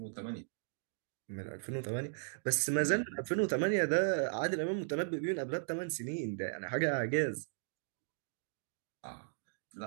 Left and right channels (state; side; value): silent; left; digital silence